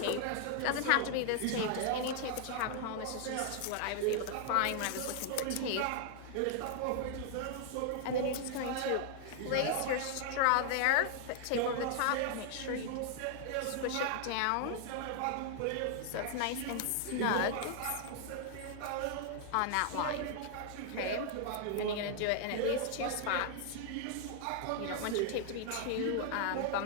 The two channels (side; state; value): both; different; correlation 0.00